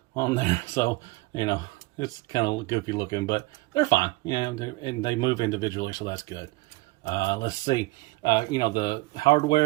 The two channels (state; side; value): quieter; left; 22.3 dB